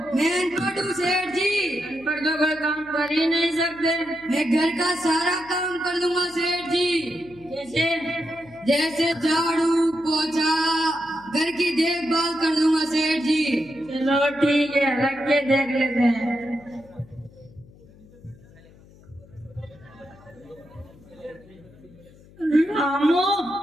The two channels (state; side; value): noise; left; hum, 24 dB below the sound